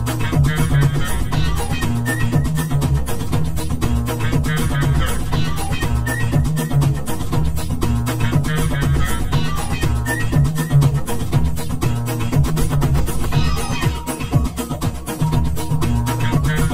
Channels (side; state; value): both; identical; correlation 1.00